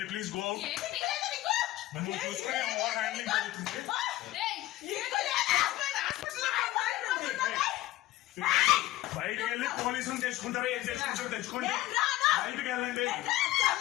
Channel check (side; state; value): right; quieter; 16.2 dB